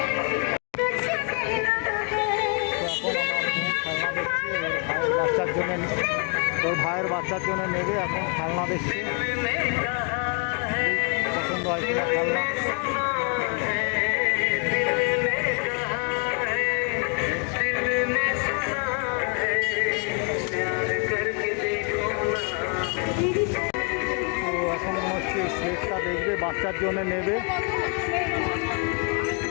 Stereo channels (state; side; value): quieter; right; 36.2 dB